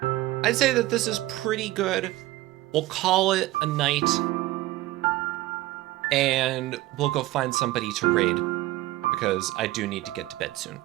I'd say that this is pretty good. We'll call it a night, and we'll go find somebody to raid, because I do need to get to bed soon.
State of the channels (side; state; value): left; quieter; 17.6 dB